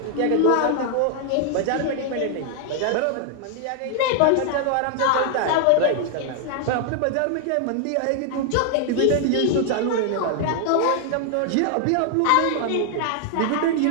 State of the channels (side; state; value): both; different; correlation 0.00